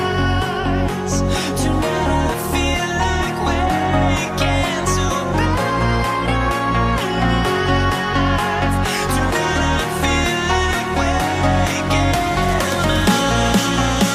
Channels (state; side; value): identical; both; correlation 1.00